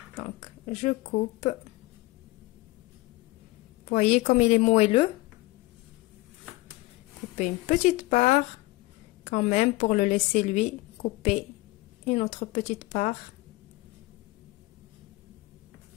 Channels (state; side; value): quieter; right; 20.4 dB